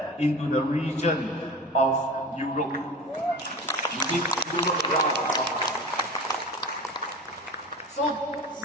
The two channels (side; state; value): both; normal; correlation 0.34